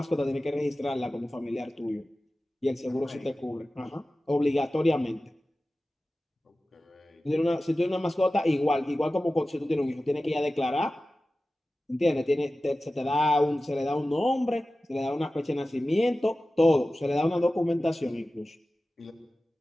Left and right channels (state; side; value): normal; both; correlation 0.95